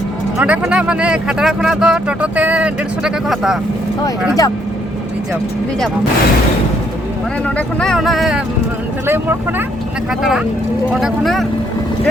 node khona mane khatara khona do toto te 150 টাকা ko hata hoy rijab mane node khona ona ঢালাই মোড় khona na khatara node khona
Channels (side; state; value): both; normal; correlation 0.69